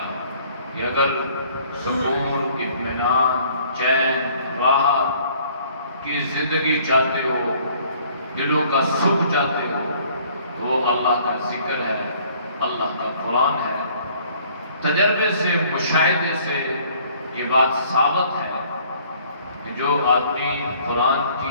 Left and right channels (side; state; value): both; inverted; correlation -0.58